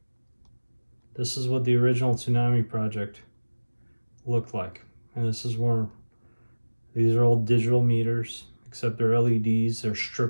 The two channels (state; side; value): inverted; both; correlation -1.00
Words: This is what the original Tsunami Project looked like. And this is where these are all digital meters, except they're LEDs. They're